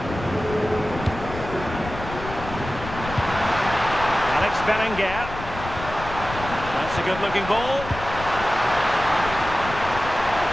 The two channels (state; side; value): noise; left; rumble, 10 dB below the sound